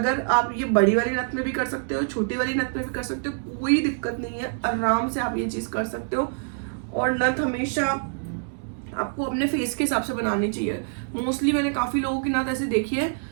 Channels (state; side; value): silent; left; digital silence